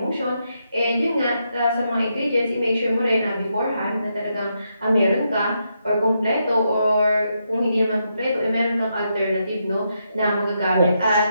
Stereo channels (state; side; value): inverted; both; correlation -0.81